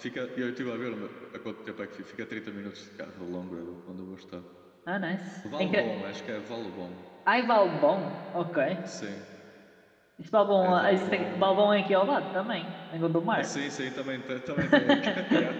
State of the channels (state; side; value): identical; both; correlation 1.00